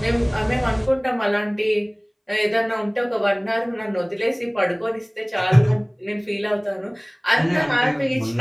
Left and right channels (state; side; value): identical; both; correlation 1.00